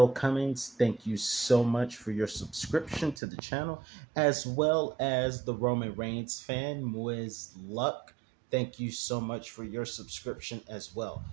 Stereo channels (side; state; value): left; drops out; at 3.2 s